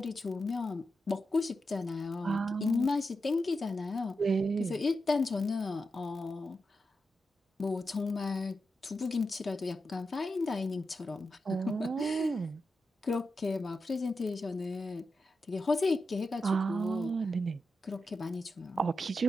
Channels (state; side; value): normal; both; correlation 0.88